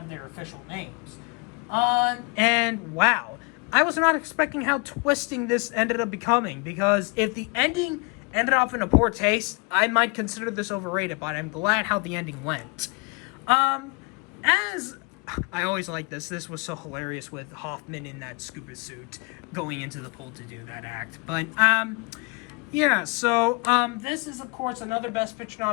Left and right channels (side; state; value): right; quieter; 30.2 dB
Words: their official names. And wow, I was not expecting how twisting this ended up becoming, because if the ending ended up in a poor taste, I might consider this overrated, but I'm glad how the ending went. As I always like this was so hilarious with Hoffman in that scuba suit going into the pool to do that act. But yeah, so this is of course another Best Picture